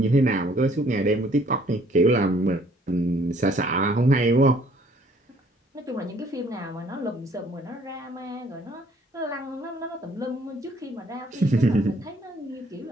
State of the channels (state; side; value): normal; both; correlation 0.61